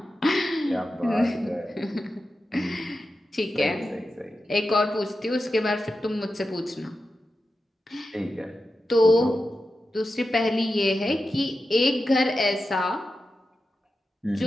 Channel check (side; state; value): both; normal; correlation 0.91